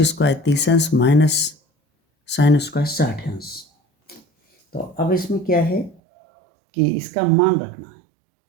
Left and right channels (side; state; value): left; drops out; at 6.0 s